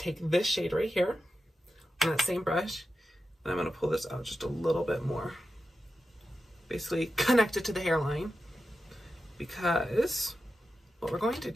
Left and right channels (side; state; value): both; normal; correlation 0.91